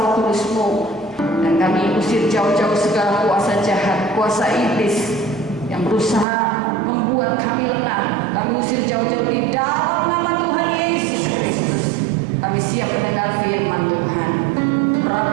Kudus-Mu. Dan kami usir jauh-jauh segala kuasa jahat, kuasa iblis yang berusaha membuat kami lengah. Kami usir jauh-jauh di dalam nama Tuhan Yesus Kristus. Kami siap mendengar firman Tuhan.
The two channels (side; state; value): left; drops out; at 6.2 s